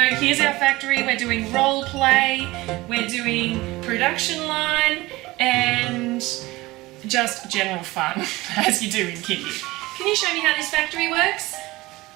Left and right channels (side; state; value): left; quieter; 20.0 dB